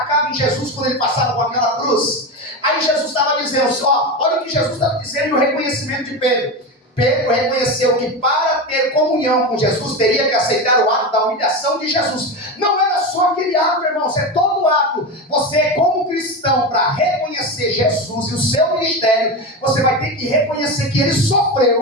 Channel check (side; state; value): both; normal; correlation 0.19